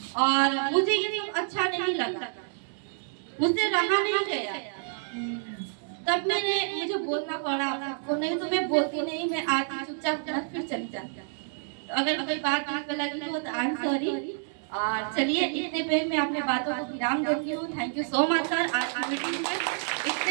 और मुझे ये सब अच्छा नहीं लगा, मुझसे रहा नहीं गया, तब मुझे बोलना पड़ा आपको, नहीं तो मैं बोलती नहीं, मैं आती चुपचाप फिर चली जाती। तो अगर कोई बात दिल पे लगी हो तो आई एम सॉरी। और चलिए, इतने पे मैं अपने बातों को विराम देती हूँ। Thank you so much sir, आज की मीटिंग में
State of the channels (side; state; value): left; silent; 59 dB below the other